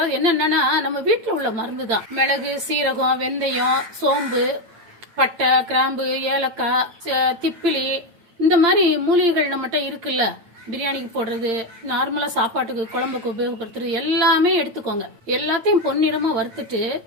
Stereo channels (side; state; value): left; late; 8.8 ms